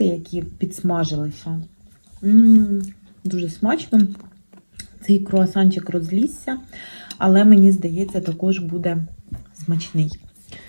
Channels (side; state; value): both; inverted; correlation -1.00